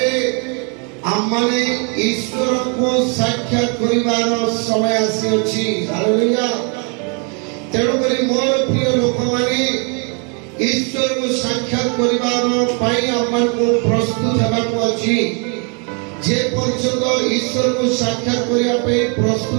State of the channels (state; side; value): quieter; left; 36.6 dB